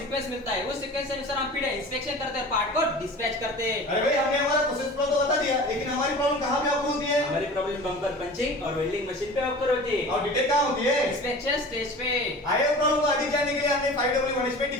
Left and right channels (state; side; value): normal; both; correlation 0.39